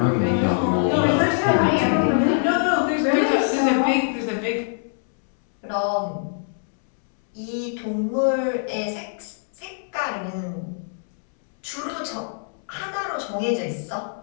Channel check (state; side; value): silent; right; 63 dB below the other